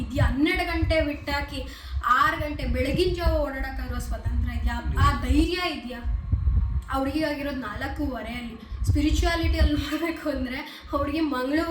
ಇದೆಯಾ? 12 ಗಂಟೆ ಬಿಟ್ಟಾಕಿ 6 ಗಂಟೆ ಬೆಳಗಿನ ಜಾವ ಓಡಾಡೋಕ್ಕಾಗಿರೋ ಸ್ವತಂತ್ರ ಇದೆಯಾ? ಆ ಧೈರ್ಯ ಇದೆಯಾ? ಅವ್ರಿಗಾಗಿರೋದು 4:15 ಸ್ಪಿರಿಚುವಾಲಿಟಿಯಲ್ಲಿ ನೋಡಬೇಕು ಅಂದರೆ ಅವ್ರಿಗೆ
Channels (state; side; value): identical; both; correlation 1.00